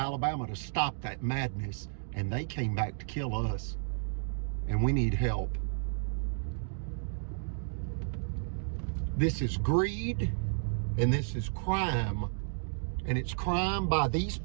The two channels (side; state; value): left; silent; digital silence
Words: to stop that madness, and they came back to kill us. And we need help. This is greed, and this is crime. And it's crime by these